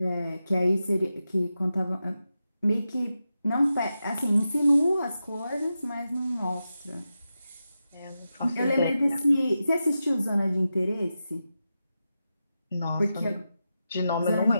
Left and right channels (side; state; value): both; inverted; correlation -0.90